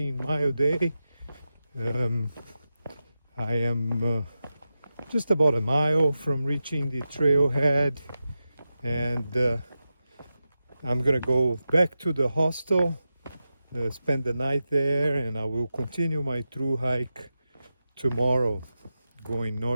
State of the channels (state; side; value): inverted; both; correlation -0.91